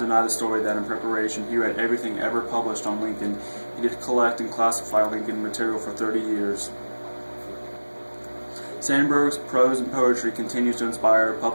the story that in preparation he read everything ever published on Lincoln, he did collect and classify Lincoln material for 30 years. Sandburg's prose and poetry continues to inspire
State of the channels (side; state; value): both; inverted; correlation -1.00